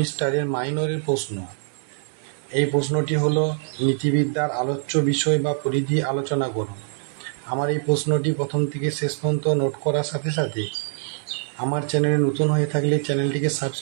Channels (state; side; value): silent; left; 63 dB below the other